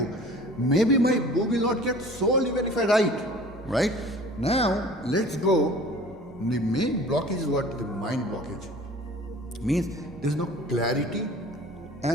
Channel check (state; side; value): normal; both; correlation 0.45